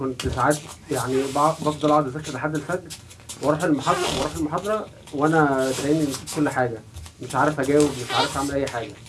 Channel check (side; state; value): both; identical; correlation 1.00